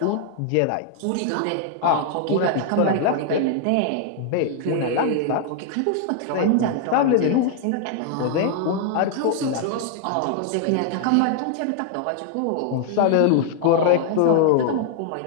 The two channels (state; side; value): different; both; correlation 0.00